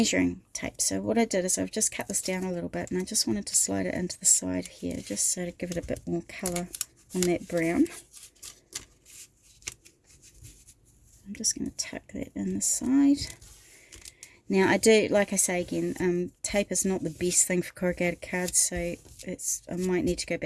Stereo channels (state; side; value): identical; both; correlation 1.00